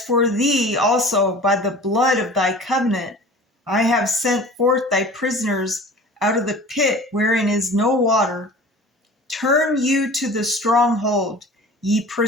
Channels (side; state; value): both; normal; correlation 0.41